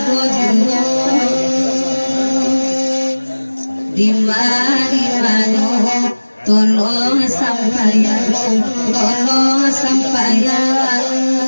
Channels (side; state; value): both; inverted; correlation -1.00